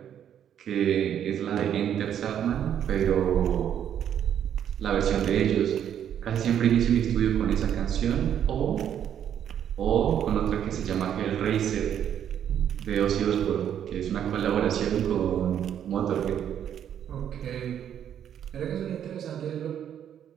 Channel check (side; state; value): left; quieter; 9.6 dB